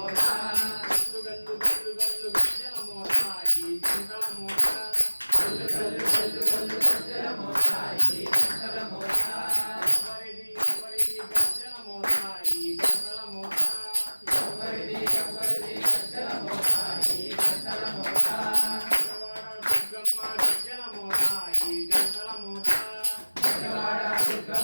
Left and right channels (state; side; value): inverted; both; correlation -1.00